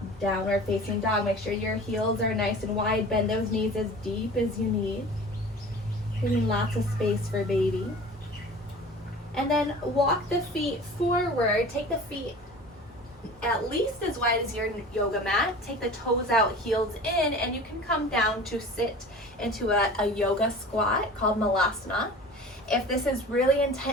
downward facing dog. Make sure your heels are nice and wide. Bend those knees as deep as you need. Giving lots of space for baby. And then walk the feet forward. Take the feet at least as wide as your yoga mat. Take the toes out, heels in, and you can come down to sit into a yoga squat called Malasana. If this is really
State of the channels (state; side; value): normal; both; correlation 0.40